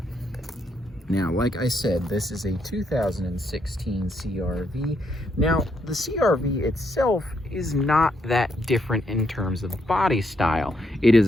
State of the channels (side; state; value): both; normal; correlation 0.76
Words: Now, like I said, this is a 2016 CR-V. Now, the CR-V itself is not that different in terms of body style. It is